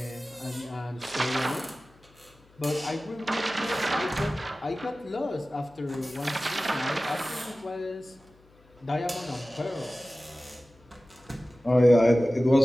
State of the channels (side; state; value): left; noise; hum, 29 dB below the sound